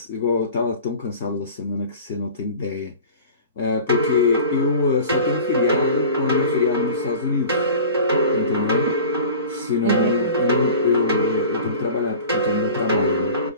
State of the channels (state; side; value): inverted; both; correlation -0.40